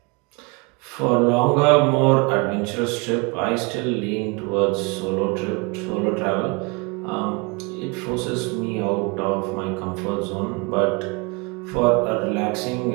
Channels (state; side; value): quieter; left; 29.4 dB